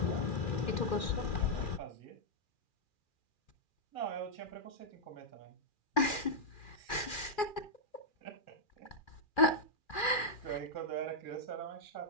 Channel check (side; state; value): right; late; 2.4 ms